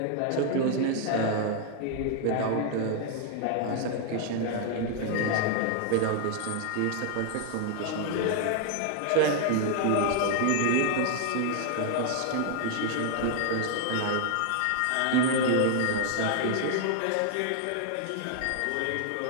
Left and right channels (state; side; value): different; both; correlation 0.00